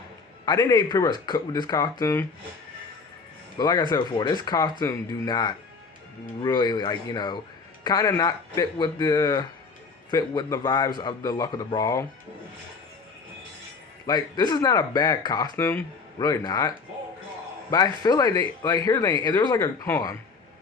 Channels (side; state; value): right; quieter; 4.7 dB